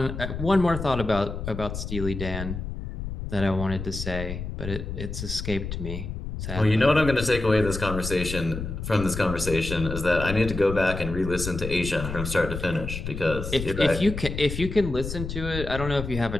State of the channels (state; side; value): noise; left; rumble, 6 dB below the sound